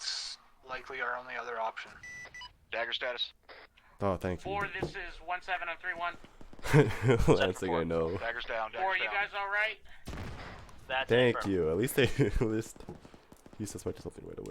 likely our only other option. Dagger status. Oh, thank you. 4, this is 1-7 on 3-1. Last thing I know. Dagger's down. 4, you guys alright? That's Thank confirmed. you. At least they he suspected something right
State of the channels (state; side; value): identical; both; correlation 1.00